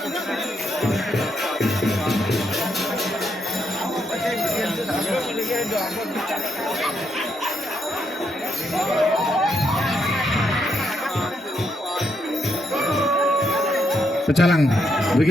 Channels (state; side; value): normal; both; correlation 0.78